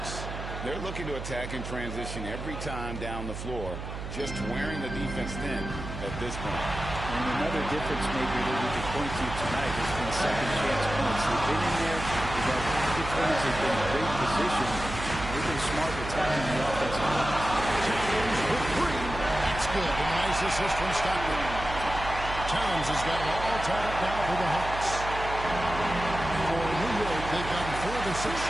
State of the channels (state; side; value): noise; right; hum, 8 dB below the sound